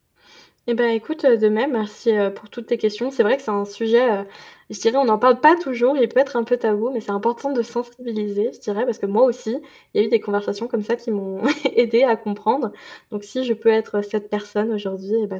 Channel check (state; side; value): identical; both; correlation 1.00